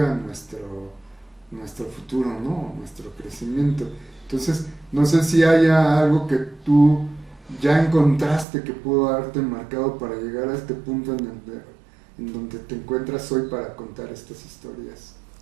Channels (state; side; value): drops out; left; at 8.5 s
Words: nuestro futuro, ¿no? Nuestro crecimiento. Entonces, no sé si haya algo que tú ya encontraste que pudo haberte marcado para llegar a este punto en donde te encuentras hoy para contar estas historias.